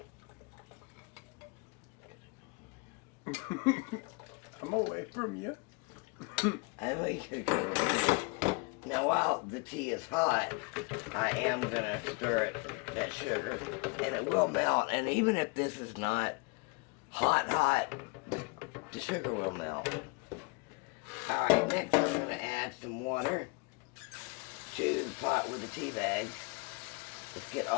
I'm away from you. I know you could go over here. Now while the tea is hot, I am going to stir that sugar, and it will melt. And even if this is not hot, the sugar will melt. Alright, next I'm going to add some water to the pot with the tea bags. Let's get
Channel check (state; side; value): quieter; right; 30.0 dB